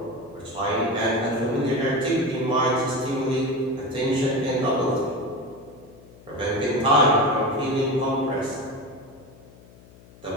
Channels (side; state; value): left; noise; hum, 23 dB below the sound